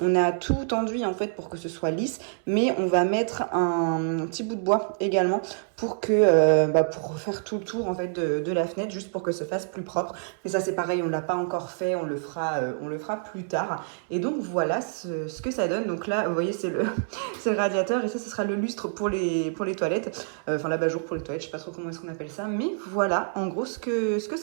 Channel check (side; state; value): left; silent; 60 dB below the other